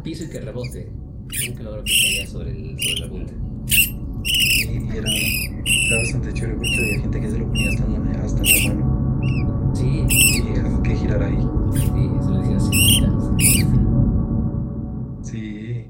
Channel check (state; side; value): identical; both; correlation 1.00